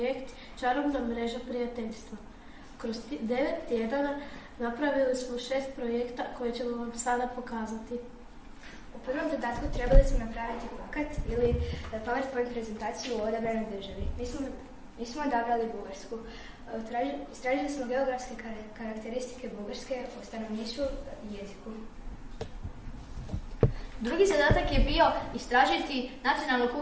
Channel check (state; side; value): identical; both; correlation 1.00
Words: Čarobna mreža prijateljstva. Kroz 9 tjedana napravili smo 6 projekta koje ćemo vam sada pokazati. U prvom zadatku trebali smo napraviti plakat ili PowerPoint prezentaciju o odabranoj državi. Mi smo odabrali Bugarsku. Istražili smo geografske karakteristike Bugarske o stanovništvu i jeziku. Drugi zadatak je bio istražiti nacionalnu